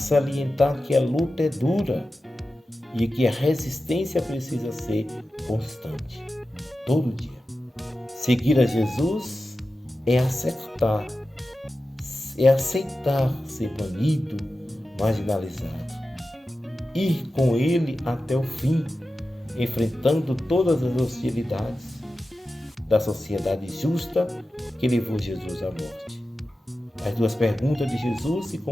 que a luta é dura e que a resistência precisa ser constante, todo dia. Seguir a Jesus é aceitar ser banido, marginalizado. Ir com ele até o fim, enfrentando todas as hostilidades da sociedade justa que levou Jesus à morte. As duas perguntas de Jesus se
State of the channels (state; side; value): normal; both; correlation 0.93